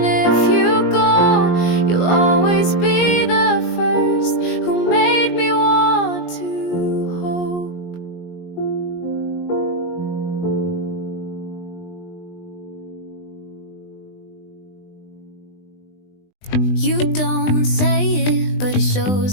if you go, you'll always be the first who made me want to hope. You don't say it, but it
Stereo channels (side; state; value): right; late; 20 ms